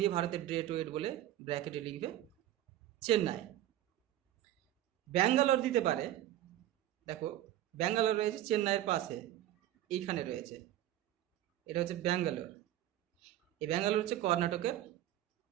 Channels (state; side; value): quieter; left; 13.2 dB